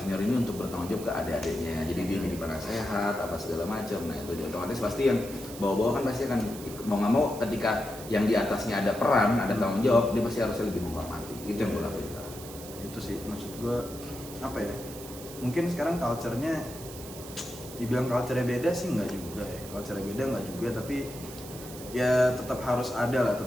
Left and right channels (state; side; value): noise; right; hiss, 14 dB below the sound